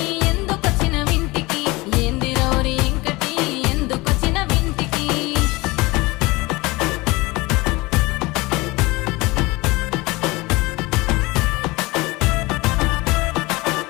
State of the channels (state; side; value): quieter; right; 22.7 dB